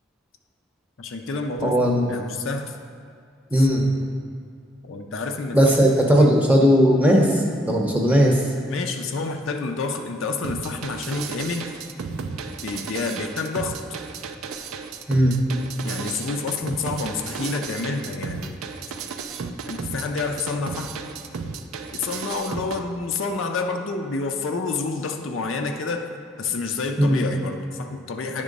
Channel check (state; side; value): normal; both; correlation 0.67